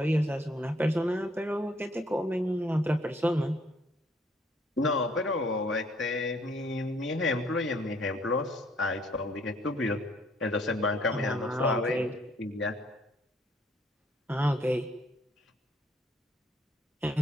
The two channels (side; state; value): both; normal; correlation 0.65